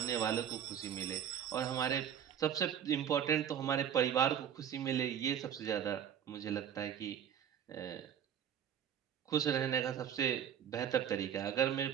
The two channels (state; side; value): quieter; left; 9.2 dB